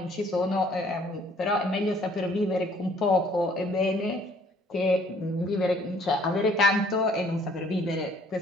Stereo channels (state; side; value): normal; both; correlation 0.59